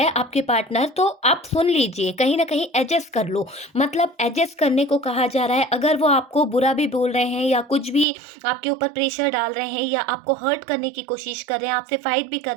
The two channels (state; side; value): drops out; left; at 8.1 s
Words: आपके पार्टनर, तो आप सुन लीजिए, कहीं न कहीं एडजस्ट कर लो। मतलब एडजस्ट करने को कहा जा रहा है। अगर वो आपको बुरा भी बोल रहे हैं या कुछ भी आपके ऊपर प्रेशर डाल रहे हैं या आपको हर्ट करने की कोशिश कर रहे हैं, आपसे फाइट भी कर